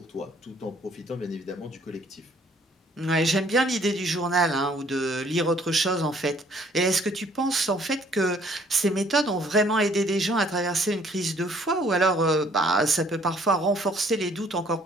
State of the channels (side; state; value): both; normal; correlation 0.60